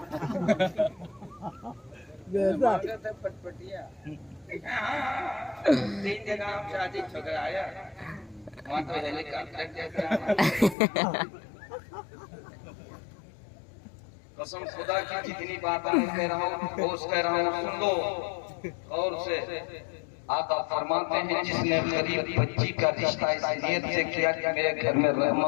मांगा था फटफटिया। 3 जगह हम शादी ठुकराया, वहाँ तो हेलीकॉप्टर जैसा। कसम खुदा की जितनी बात मैं कह रहा हूँ ठोस कह रहा हूँ, सुन लो और से। आका फरमाते हैं जिसने गरीब बच्ची का रिश्ता इस नियत से किया कि मेरे घर में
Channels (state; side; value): drops out; right; at 10.8 s